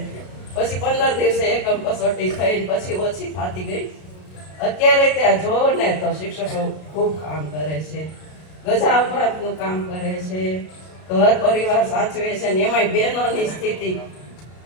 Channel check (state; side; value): late; right; 33 ms